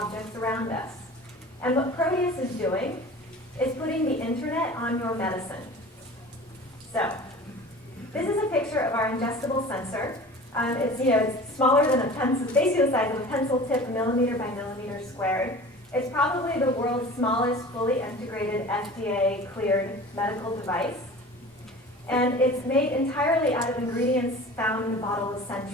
around us. And what Proteus is doing is putting the internet on your medicine. So, this is a picture of our ingestible sensor. It's smaller than a pencil, basically the size of a pencil tip, millimeter by millimeter squared. It's probably the world's smallest fully integrated FDA-cleared medical device. And it's made entirely out of ingredients found in a bottle of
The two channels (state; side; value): normal; both; correlation 0.40